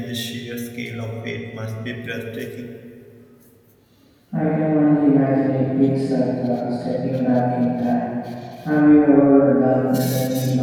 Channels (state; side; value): identical; both; correlation 1.00